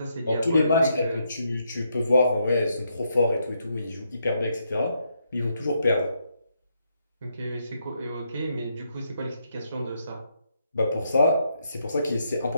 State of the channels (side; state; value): both; inverted; correlation -0.77